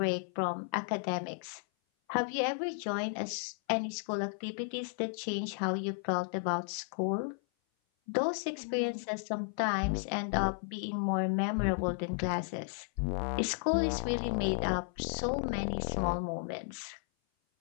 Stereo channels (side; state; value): right; silent; 55 dB below the other